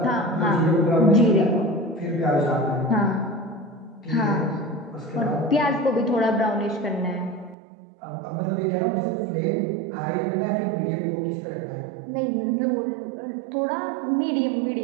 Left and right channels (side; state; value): left; drops out; at 7.6 s